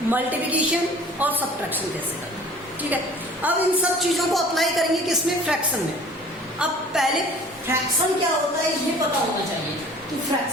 मल्टीप्लिकेशन और सब्ट्रैक्शन कैसे करना है. ठीक है. अब इन सब चीजों को अप्लाई करेंगे किसमें, फ्रैक्शन में. अब पहले फ्रैक्शन क्या होता है ये पता होना चाहिए कि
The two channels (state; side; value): normal; both; correlation 0.47